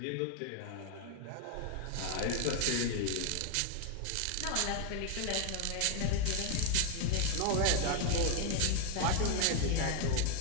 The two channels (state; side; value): different; both; correlation 0.01